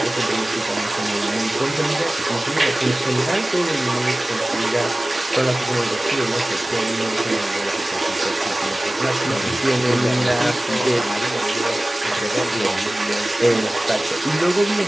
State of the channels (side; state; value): both; normal; correlation 0.98